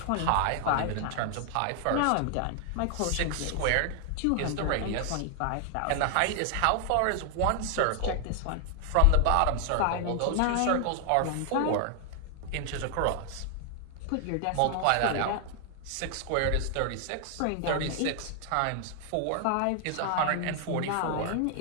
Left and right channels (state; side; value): different; both; correlation 0.00